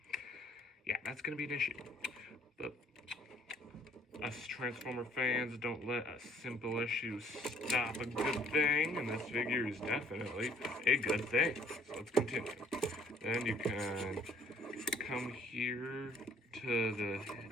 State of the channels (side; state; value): both; normal; correlation 0.60